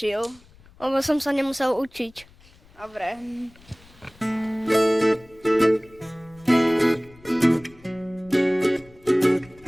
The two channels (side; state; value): left; noise; rumble, 26 dB below the sound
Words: Lebo som sa nemusel učiť. Dobre.